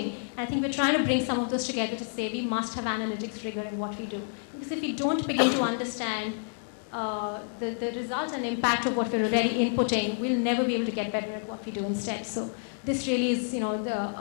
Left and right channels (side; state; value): right; silent; digital silence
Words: And I think we're trying to bring some of those together to say we must have analytics rigor in what we do. Because if we don't begin to understand the result and impact of what we're already inputting, we'll never be able to get better at what we do instead. So this really is